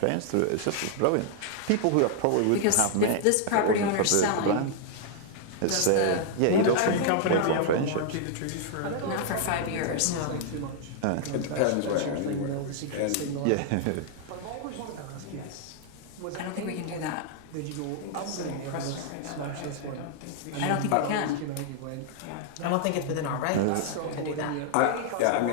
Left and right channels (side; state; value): both; different; correlation -0.01